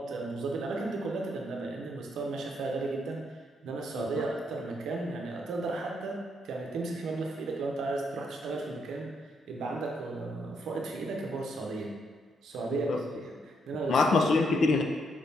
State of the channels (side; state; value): both; normal; correlation 0.76